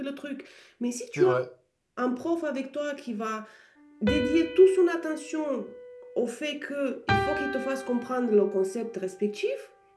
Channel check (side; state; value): both; identical; correlation 1.00